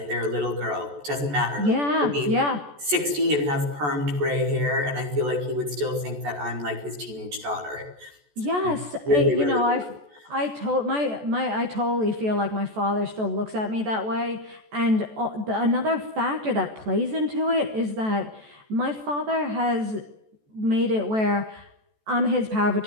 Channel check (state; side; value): late; left; 14 ms